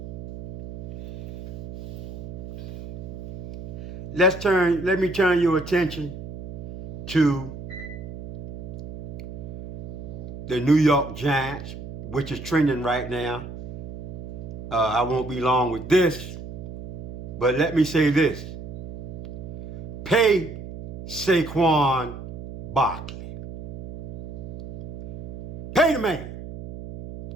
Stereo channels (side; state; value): right; noise; hum, 9 dB below the sound